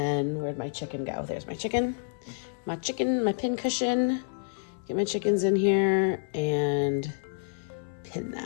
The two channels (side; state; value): right; silent; 56 dB below the other